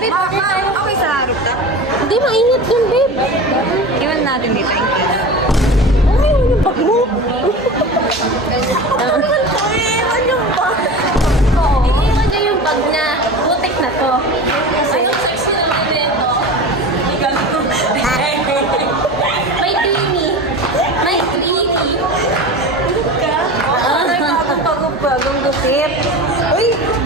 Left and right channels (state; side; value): normal; both; correlation 0.31